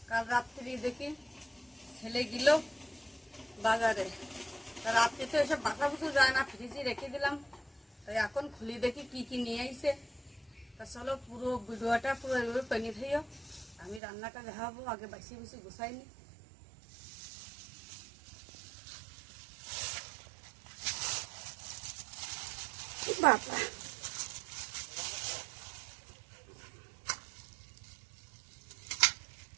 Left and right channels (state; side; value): drops out; left; at 14.0 s